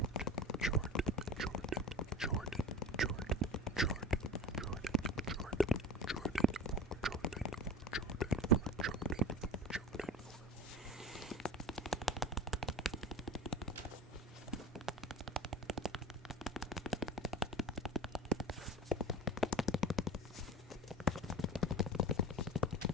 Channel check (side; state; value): both; normal; correlation 0.32